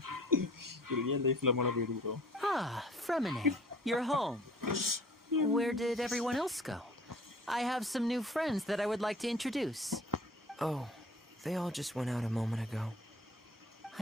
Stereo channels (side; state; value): both; normal; correlation 0.49